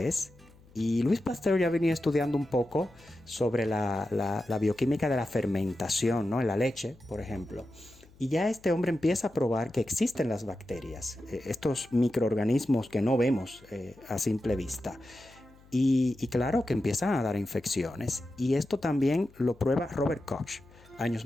Y Louis Pasteur ya venía estudiando un poco sobre la bioquímica de la fermentación, ¿no? En la leche, por ejemplo. Y ya este hombre empieza a probar que existen las bacterias, estos microorganismos que no vemos a simple vista. Y claro, que empiezan a dar infecciones. Y esto también lo prueba Robert Koch años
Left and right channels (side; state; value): left; noise; hum, 26 dB below the sound